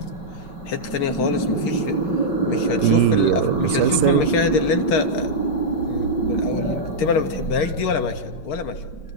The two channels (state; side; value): late; right; 6.6 ms